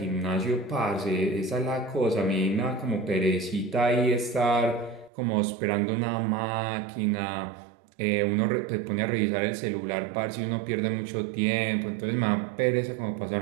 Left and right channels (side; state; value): left; drops out; at 5.1 s